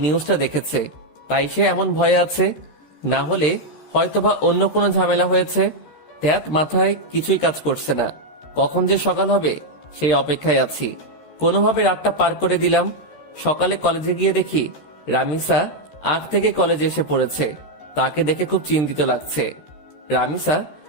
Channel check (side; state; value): right; late; 13 ms